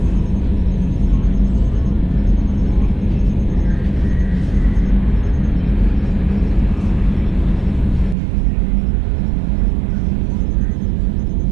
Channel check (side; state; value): left; drops out; at 8.2 s